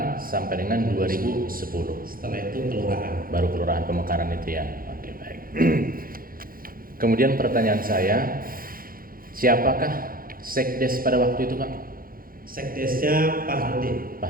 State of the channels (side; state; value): left; late; 0.42 ms